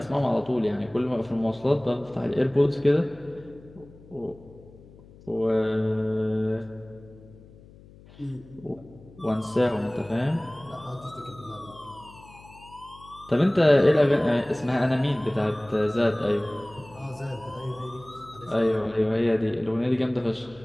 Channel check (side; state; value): left; noise; hum, 22 dB below the sound